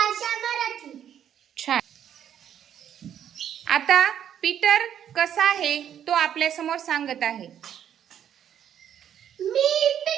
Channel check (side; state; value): left; quieter; 9.6 dB